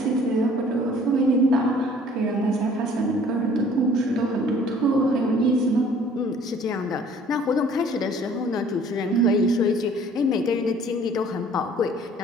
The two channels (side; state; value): both; normal; correlation 0.54